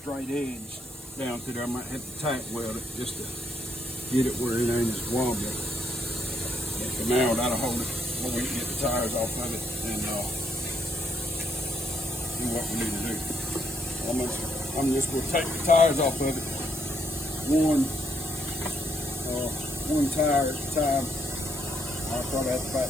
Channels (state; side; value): normal; both; correlation 0.74